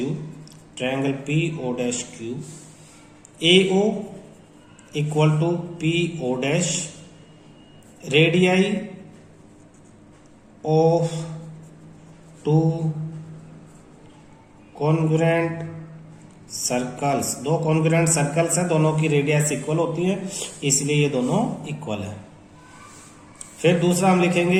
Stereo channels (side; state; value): both; identical; correlation 1.00